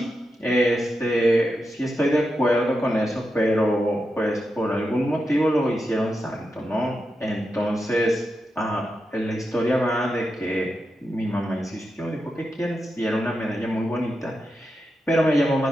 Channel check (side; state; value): both; normal; correlation 0.88